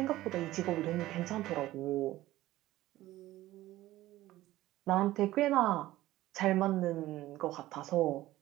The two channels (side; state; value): left; quieter; 15.9 dB